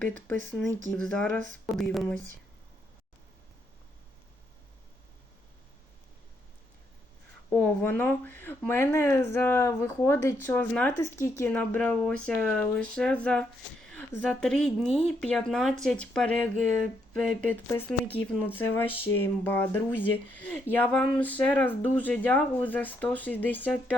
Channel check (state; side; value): normal; both; correlation 0.76